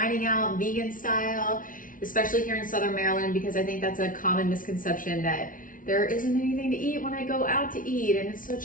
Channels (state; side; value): late; right; 0.39 ms